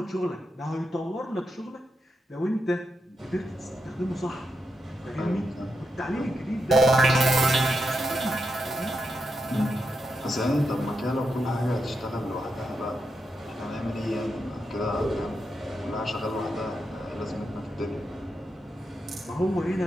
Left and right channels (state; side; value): normal; both; correlation 0.85